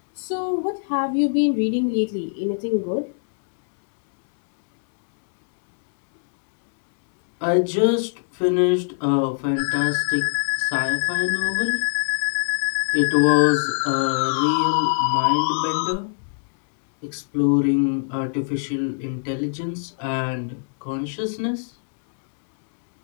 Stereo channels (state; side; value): silent; right; digital silence